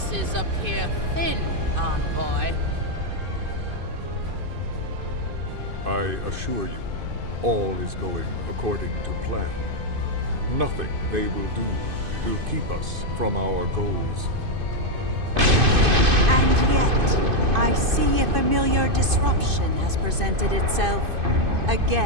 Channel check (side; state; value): left; late; 2.5 ms